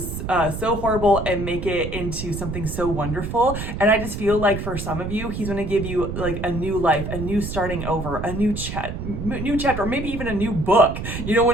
so horrible and make it into something so wonderful. And I just feel like for some of you, he's going to give you like a new life, a new starting over, a new chapter, or maybe even a new book. You know,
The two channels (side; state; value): right; noise; rumble, 6 dB below the sound